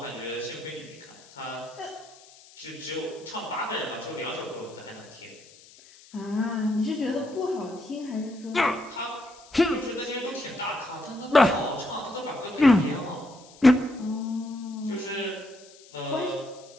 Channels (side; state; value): left; noise; hiss, 23 dB below the sound